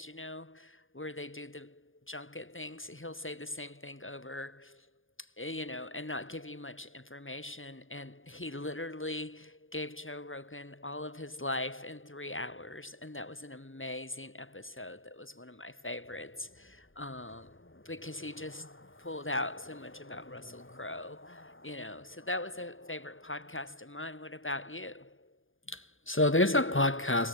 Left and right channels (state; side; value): late; right; 0.58 ms